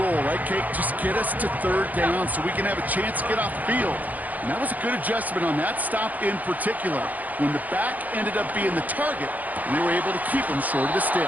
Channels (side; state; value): left; late; 0.079 ms